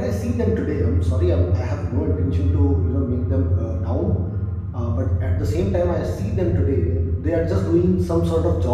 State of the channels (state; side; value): identical; both; correlation 1.00